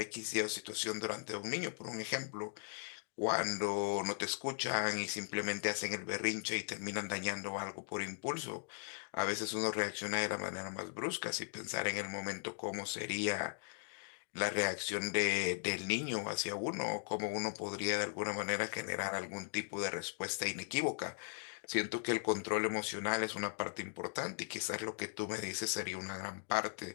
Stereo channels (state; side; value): silent; right; digital silence